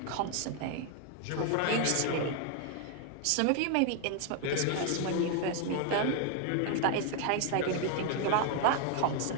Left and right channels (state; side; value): different; both; correlation 0.00